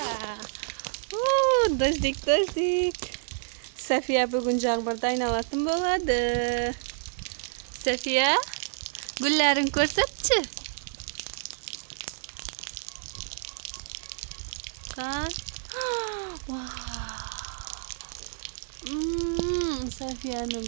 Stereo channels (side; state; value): left; silent; 59 dB below the other